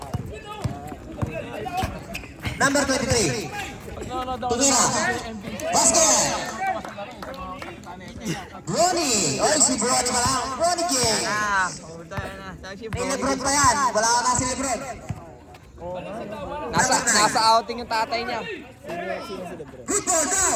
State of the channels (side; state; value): both; identical; correlation 1.00